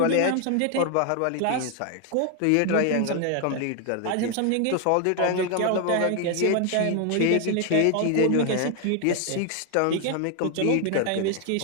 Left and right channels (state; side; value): different; both; correlation 0.00